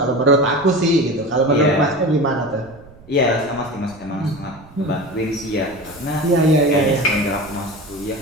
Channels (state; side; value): noise; right; rumble, 23 dB below the sound